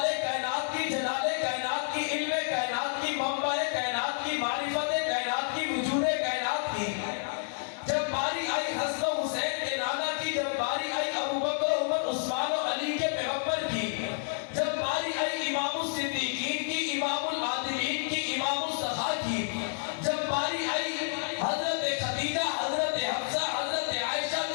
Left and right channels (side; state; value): right; silent; digital silence